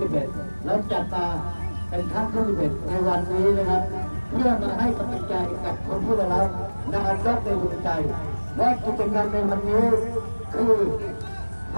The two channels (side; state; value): both; inverted; correlation -1.00